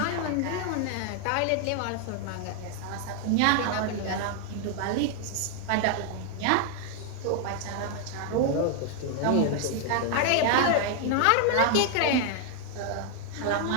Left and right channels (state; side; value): different; both; correlation 0.00